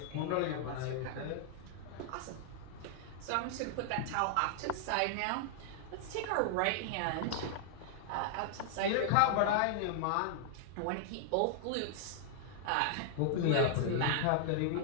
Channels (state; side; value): different; both; correlation -0.01